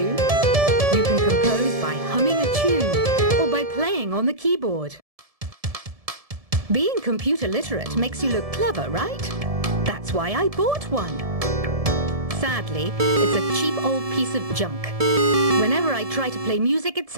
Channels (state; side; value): late; left; 1.7 ms